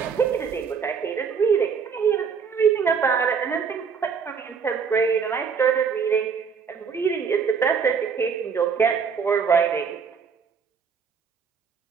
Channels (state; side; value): quieter; left; 6.1 dB